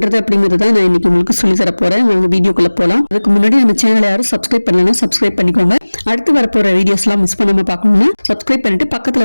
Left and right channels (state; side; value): inverted; both; correlation -1.00